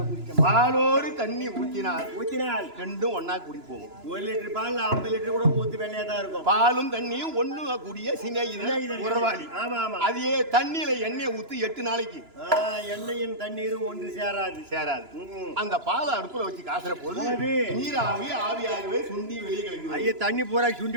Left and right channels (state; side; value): late; left; 2.9 ms